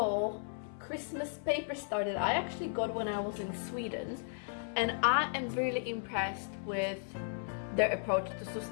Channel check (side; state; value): right; silent; 54 dB below the other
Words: Christmas paper star that I actually got when I was in Sweden, and I am really impressed with their approach to